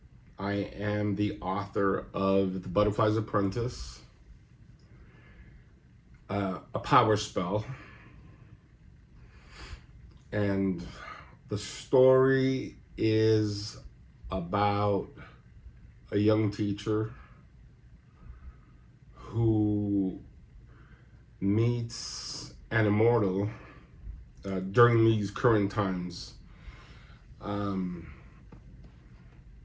I am the author of The Butterfly's Apprentice, a power spell, and the story is about a young teacher who meets an immortal during these current times. Um,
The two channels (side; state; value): both; identical; correlation 1.00